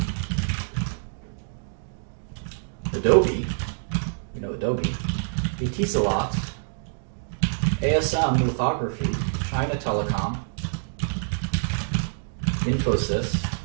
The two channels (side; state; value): left; silent; digital silence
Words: Adobe, we know Adobe, Etisalat, ASM Lithography, China Telecom, Infosys.